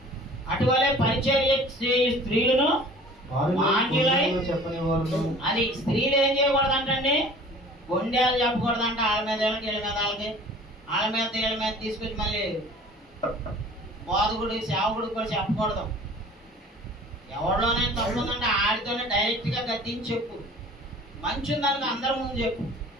అటువలే పరిచర్య స్త్రీలను మాన్యులై, అది స్త్రీలు ఏం చేయకూడదంటండి, గొండేలు చెప్పకూడదంట. వాళ్ళ మీద వీళ్ళ మీద వాళ్ళకి, వాళ్ళ మీద వీళ్ళ మీద తీసుకొచ్చి మళ్ళీ బోధకుడు సేవకుడు కూడా చెప్పకూడదు. ఎవరిలోనే తప్పు ఉందంటే ఆడితోనే డైరెక్ట్ గా గద్దించి చెప్పు. మంచి ఉందనుకో అందరి ముందు చెప్పు,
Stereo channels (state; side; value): normal; both; correlation 0.46